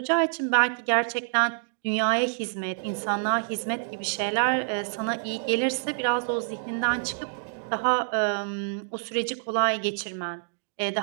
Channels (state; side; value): silent; left; digital silence